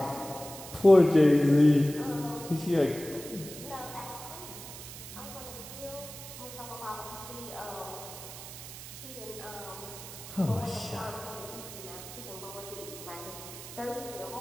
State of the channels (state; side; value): noise; right; hiss, 12 dB below the sound